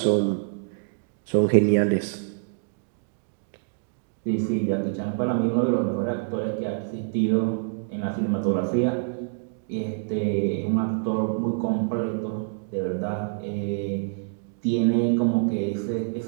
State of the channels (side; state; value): left; silent; digital silence